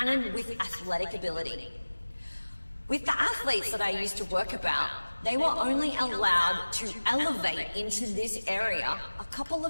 with athletic ability. With the athletes that I used to work about, they were only allowed to elevate into this area a couple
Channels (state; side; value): inverted; both; correlation -1.00